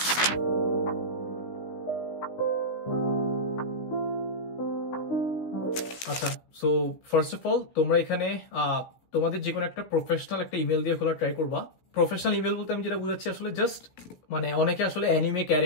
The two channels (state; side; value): late; right; 16 ms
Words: আচ্ছা, সো ফার্স্ট অফ অল তোমরা এখানে তোমাদের যে কোনো একটা প্রফেশনাল একটা ইমেল দিয়ে খোলা ট্রাই করবা। প্রফেশনাল ইমেল বলতে আমি যেটা বুঝাচ্ছি আসলে জাস্ট মানে অনেকে আসলে অ্যানিমে